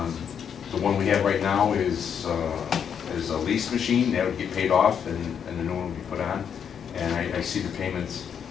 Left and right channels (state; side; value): quieter; right; 7.8 dB